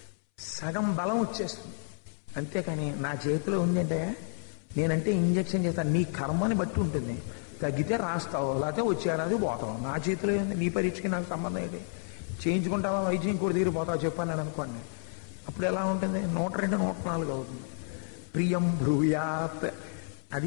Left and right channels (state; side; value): silent; right; 57 dB below the other